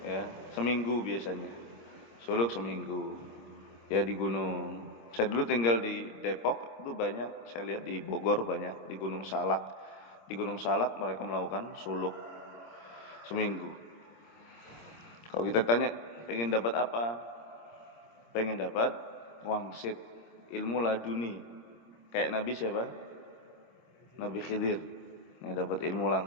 seminggu biasanya. Suluk seminggu. Ya di gunung. Saya dulu tinggal di Depok, itu banyak, saya lihat di Bogor banyak, di Gunung Salak. Di Gunung Salak mereka melakukan suluk seminggu. Kalau kita tanya, pengen dapat apa? Pengen dapat wangsit, ilmu laduni. Kayak Nabi siapa? Nabi Khidir. Yang dapat ilmu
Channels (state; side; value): late; right; 26 ms